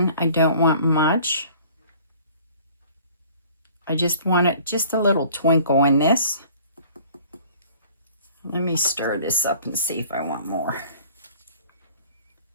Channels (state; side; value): inverted; both; correlation -0.51